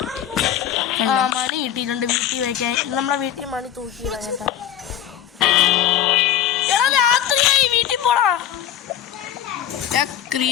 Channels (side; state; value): right; quieter; 10.7 dB